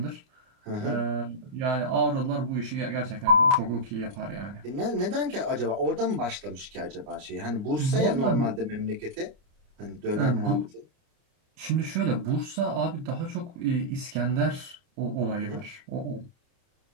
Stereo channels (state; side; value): late; left; 30 ms